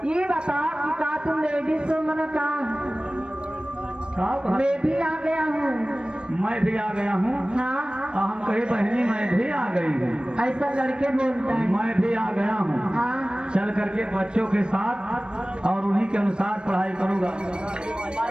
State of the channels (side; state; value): left; late; 0.054 ms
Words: ये बता कि का तुम लेडीज हो मन का? मैं भी आ गया हूँ। मैं भी आ गया हूँ। हाँ हम कहे बहनी मैं भी आ गई हूँ। ऐसा लड़के बोलता है। मैं भी आ गया हूँ। हाँ चल करके बच्चों के साथ और उन्हीं के अनुसार पढ़ाई करूँगा।